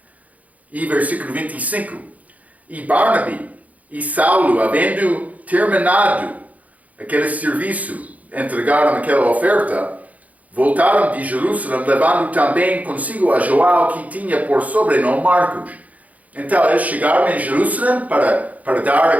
e versículo 25. E Barnaby e Saulo, havendo terminado aquele serviço, entregaram aquela oferta, voltaram de Jerusalém, levando também consigo a João, que tinha por sobrenome Marcos. Então, eles chegaram em Jerusalém para dar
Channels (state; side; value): late; left; 0.073 ms